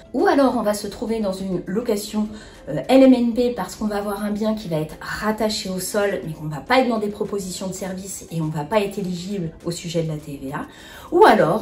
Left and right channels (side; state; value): both; identical; correlation 1.00